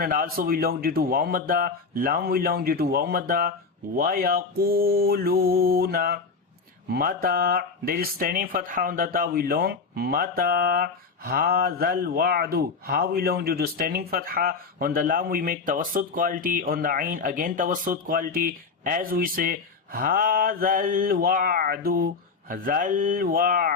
and also we long due to waw madda, lam we long due to waw madda. وَيَقُولُونَ mata, there is standing fatha on the ta, we long mata hadhal wa'du, ha we long due to standing fatha. On the lam we make tawassut quality, on the ain again tawassut quality as we say hadhal wa'du, dhal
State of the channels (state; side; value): quieter; right; 4.8 dB